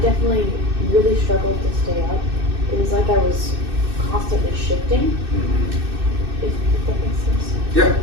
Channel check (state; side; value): late; left; 2.6 ms